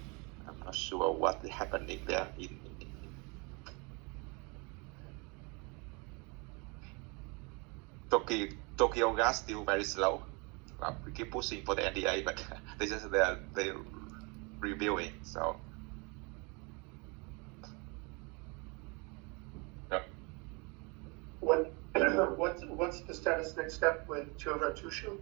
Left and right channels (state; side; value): quieter; left; 30.4 dB